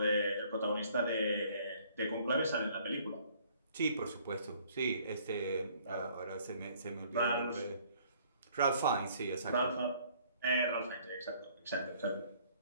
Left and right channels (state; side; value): inverted; both; correlation -0.59